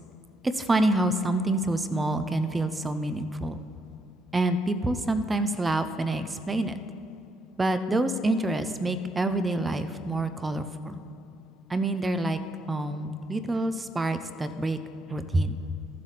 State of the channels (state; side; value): normal; both; correlation 0.77